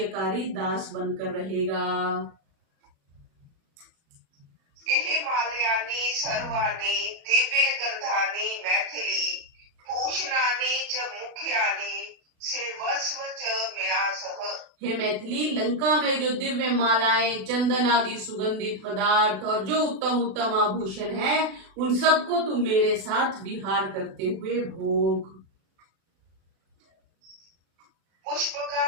दास बनकर रहेगा। हिमालयानी सर्वाणी दिव्य गर्धानी मैथिली भूषणानी च मुख्यानी सेवस्व च मया सह। हे मैथिली, लंका में जो दिव्य मालाएं, चंदन आदि सुगंधित पदार्थ और जो उत्तम उत्तम आभूषण है, उन सबको तुम मेरे साथ विहार करते हुए भोग।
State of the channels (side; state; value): left; late; 36 ms